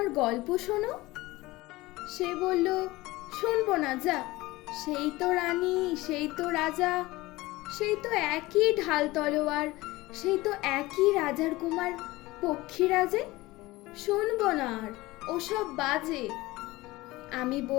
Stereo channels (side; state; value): right; quieter; 19.8 dB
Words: গল্প শোনো। সে বলল, শুনবো না, যা, সেই তো রানী, সেই তো রাজা, সেই তো একই ঢাল তলোয়ার, সেই তো একই রাজার কুমার পক্ষীরাজে, শুনবো না আর, ওসব বাজে। আমি